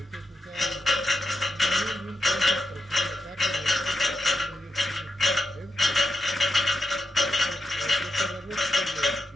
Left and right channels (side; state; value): both; normal; correlation 0.86